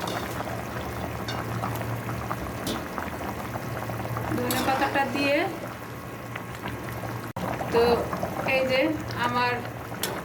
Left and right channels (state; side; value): identical; both; correlation 1.00